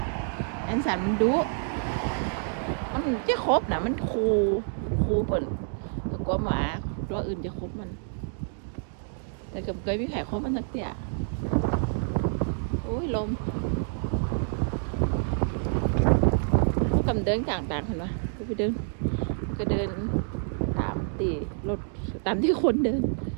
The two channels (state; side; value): silent; left; 59 dB below the other